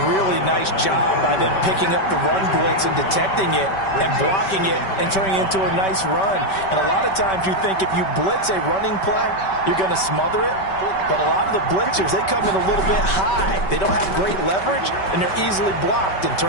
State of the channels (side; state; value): right; late; 5.2 ms